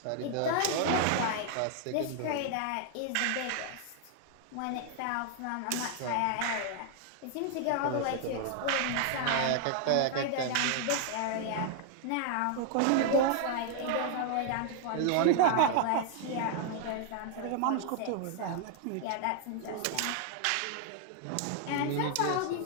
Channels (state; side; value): different; both; correlation 0.00